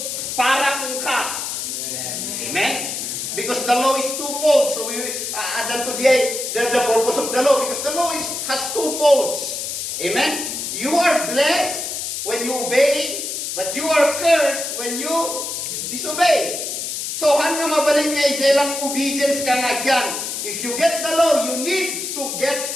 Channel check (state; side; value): noise; left; hiss, 4 dB below the sound